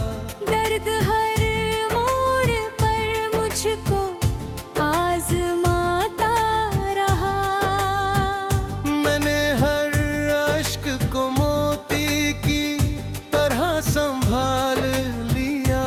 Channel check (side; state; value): both; identical; correlation 1.00